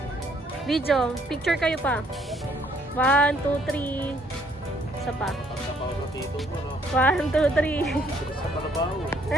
Video, picture kayo pa. 1, 2, 3. Isa pa. 1, 2, 3.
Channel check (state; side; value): normal; both; correlation 0.66